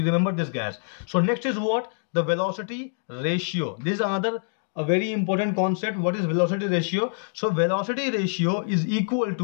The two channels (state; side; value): silent; right; digital silence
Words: remember this, guys. So next is what? The velocity ratio. This is another a very important concept. What is velocity ratio? So velocity ratio is equal